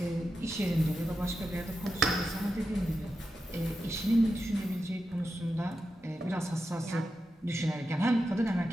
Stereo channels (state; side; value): normal; both; correlation 0.89